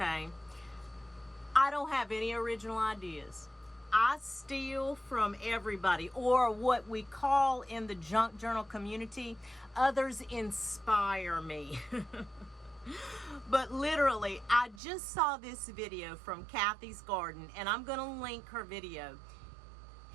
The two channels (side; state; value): left; drops out; at 14.8 s